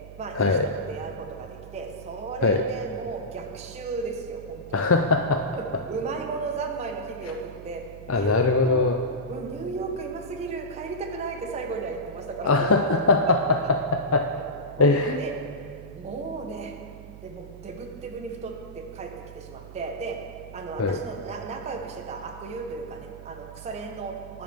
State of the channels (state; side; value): noise; right; hum, 15 dB below the sound